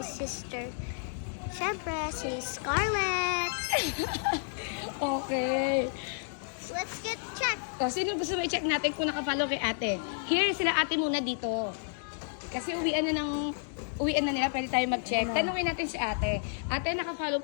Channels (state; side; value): silent; right; digital silence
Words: sister. Siyempre, si Scarlett. Okay. Let's get checked. So, sino gusto mo i-check natin kung nakafollow kay ate? Here, sila ate muna dito. Kasi uwian na nila, pwede tayo mag-check. Tanungin natin si ate. Ate, nakafollow